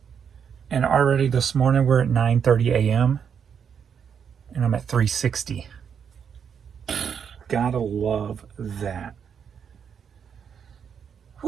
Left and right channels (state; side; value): quieter; left; 7.4 dB